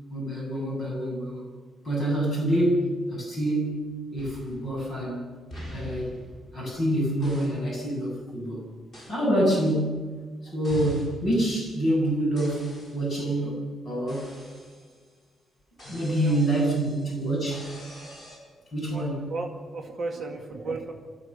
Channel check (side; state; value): both; normal; correlation 0.65